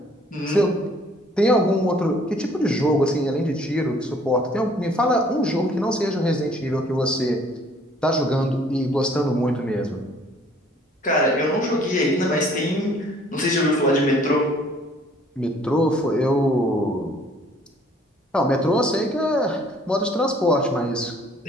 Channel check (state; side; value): normal; both; correlation 0.58